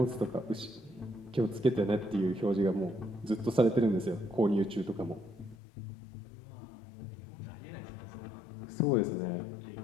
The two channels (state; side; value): drops out; right; at 5.6 s